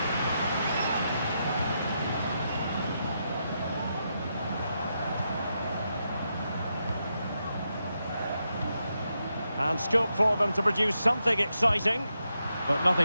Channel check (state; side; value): inverted; both; correlation -0.84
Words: And scope for them to produce something exciting. But